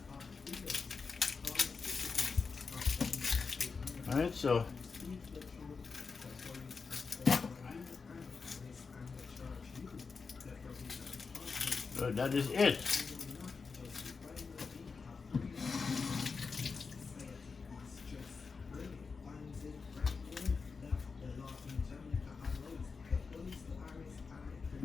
Alright, so that is it.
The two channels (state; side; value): quieter; right; 4.9 dB